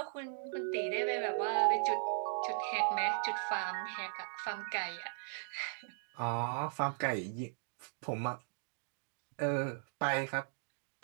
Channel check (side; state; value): left; silent; digital silence